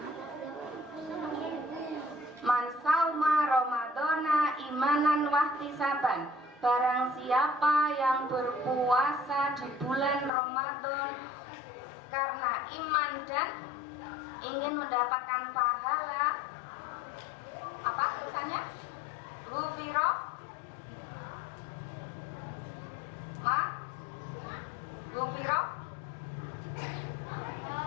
Man sauma Ramadana imanan wahtisaban. Barang siapa yang berpuasa di bulan Ramadan karena iman dan ingin mendapatkan pahala, apa tulisannya? Ghufiro ma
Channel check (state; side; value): drops out; right; at 10.3 s